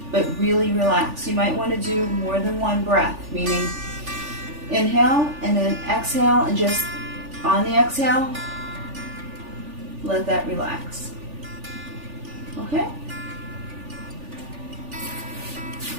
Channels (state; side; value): late; left; 3.4 ms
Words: but really relax. You might want to do more than one breath, meaning inhale and then exhale, and just on the exhale, let that relax. Okay?